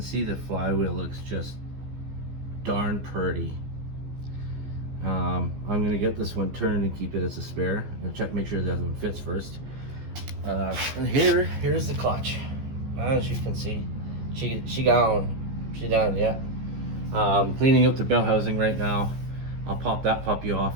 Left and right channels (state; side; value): late; left; 15 ms